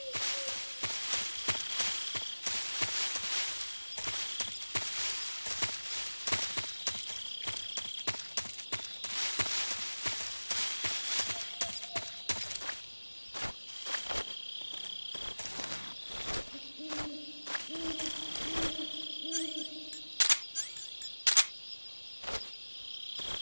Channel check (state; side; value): inverted; both; correlation -1.00